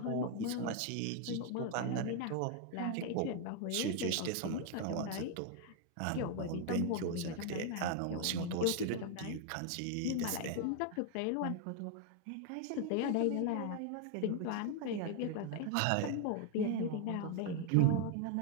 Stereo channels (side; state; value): both; different; correlation 0.00